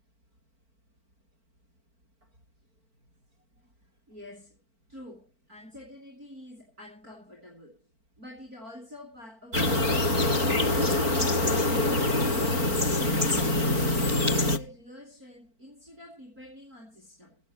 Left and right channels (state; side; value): late; left; 4.4 ms